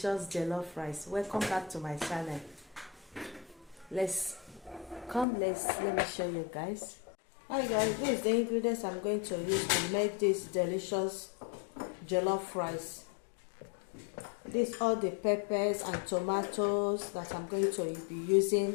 jollof rice. Welcome back to my channel. Let me show you guys. Hi guys, this is the ingredients I'm going to use to make this delicious jollof rice. These all the peppers and tomatoes that I'm going to be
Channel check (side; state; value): right; drops out; at 5.2 s